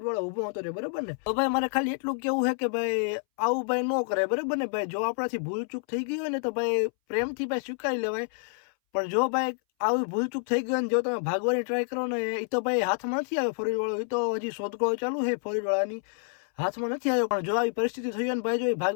ઊભો હતો રે બરાબર ને તો ભાઈ મારે ખાલી એટલું કેવું છે કે ભાઈ આવું ભાઈ ન કરે બરાબર ને ભાઈ જો આપણાથી ભૂલચૂક થઈ ગઈ હોય ને તો ભાઈ પ્રેમથી ભાઈ સ્વીકારી લેવાય પણ જો ભાઈ આવી ભૂલચૂક થઈ ગઈ ને જો તમે ભાગવાની ટ્રાય કરો ને એ તો ભાઈ હાથમાં નથી આવ્યો ફરીવાળો એ તો હજી શોધખોળ ચાલુ છે ફરીવાળાની હાથમાં નથી આવ્યો પણ જો આવી પરિસ્થિતિ થઈ હોય ને ભાઈ જો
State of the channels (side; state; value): right; silent; 59 dB below the other